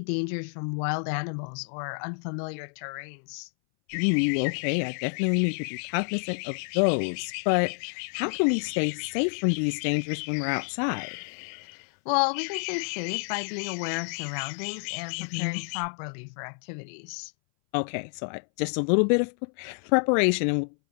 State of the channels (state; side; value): silent; right; 59 dB below the other